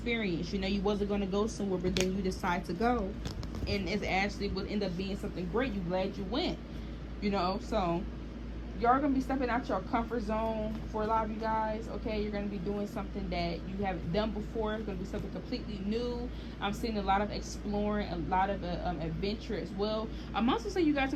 You know, you wasn't going to go somewhere, but then you decide to go. And it actually would end up being something great. You're glad you went. You know, so you're going to be stepping out your comfort zone for a lot of you guys, okay? You're going to be doing something that you haven't done before. It's going to be something completely new. I'm seeing a lot of exploring, a lot of adventure as well. I'm also saying you guys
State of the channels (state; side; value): identical; both; correlation 1.00